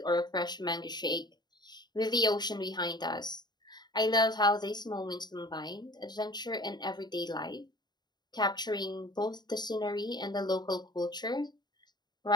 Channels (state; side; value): late; right; 0.20 ms